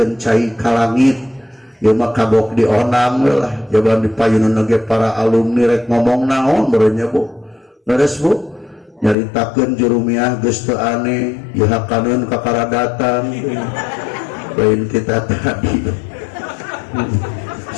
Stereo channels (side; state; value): right; drops out; at 9.2 s